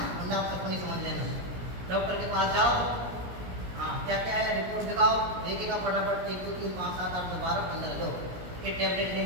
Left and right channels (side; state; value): left; late; 17 ms